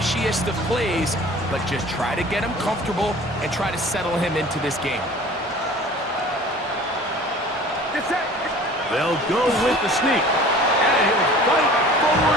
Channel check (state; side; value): normal; both; correlation 0.45